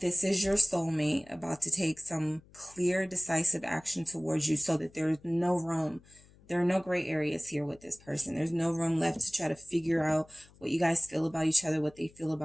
is your soulmate about to take some clear, decisive action towards you so that there's no room. There are no gray areas here with this person. There's no room left to try to figure out what you guys feel about each other, what they feel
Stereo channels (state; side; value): noise; left; hum, 26 dB below the sound